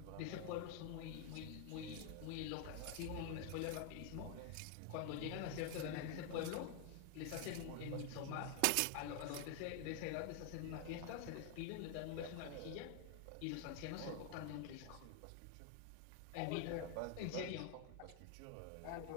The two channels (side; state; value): both; different; correlation 0.00